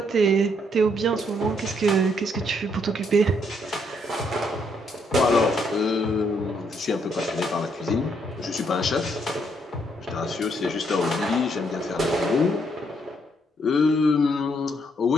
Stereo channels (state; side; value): normal; both; correlation 0.72